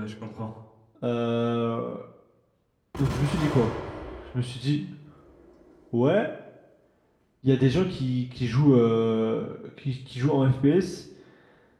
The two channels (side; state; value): both; identical; correlation 1.00